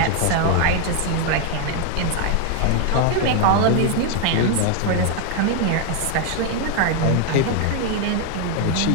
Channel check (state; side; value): different; both; correlation 0.01